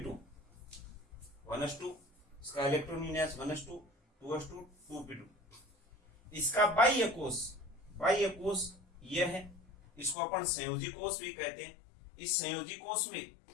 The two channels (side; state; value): right; drops out; at 10.2 s